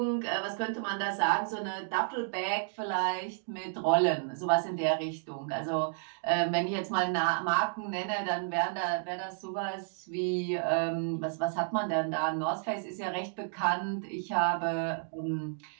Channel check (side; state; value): left; silent; digital silence